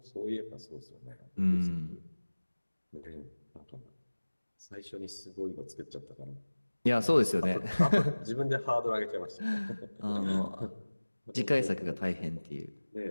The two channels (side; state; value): both; inverted; correlation -1.00